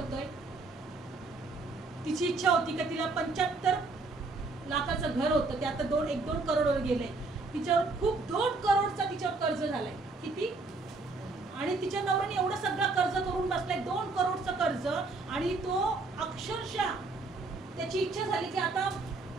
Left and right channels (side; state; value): left; quieter; 3.7 dB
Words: तिची इच्छा होती की तिला 75 लाखाचं घर होतं, ते आता 1-2 करोडवर गेलंय. तिच्यावर खूप 2 करोडचा तिच्यावर कर्ज झालाय. किती? आणि तिच्या नवऱ्याने एवढं सगळं कर्ज करून बसलाय, 2 करोडचं कर्ज. आणि तो अक्षरशः त्याची इच्छा झाली की आता